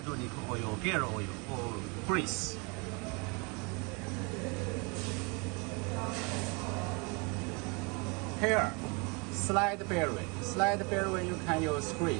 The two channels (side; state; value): left; quieter; 30.8 dB